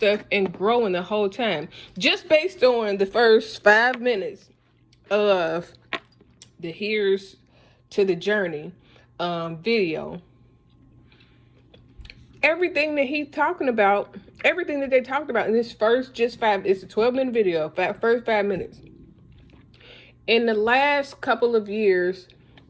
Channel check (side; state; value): both; identical; correlation 1.00